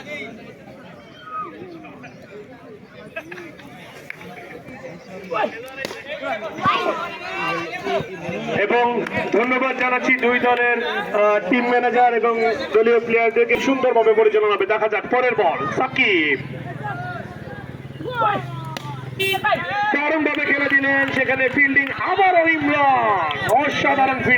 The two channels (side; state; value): both; identical; correlation 1.00